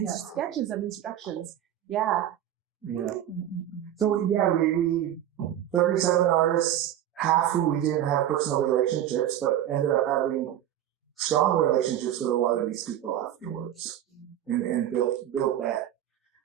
sketches of instructions. Yeah. Yeah. So we 37 artists, half who we didn't have personal relationships, but ended up having strong relationships with a lot of these people afterwards, and built that.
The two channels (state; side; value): quieter; left; 11.5 dB